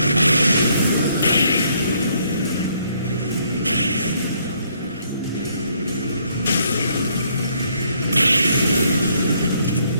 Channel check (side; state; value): both; inverted; correlation -0.68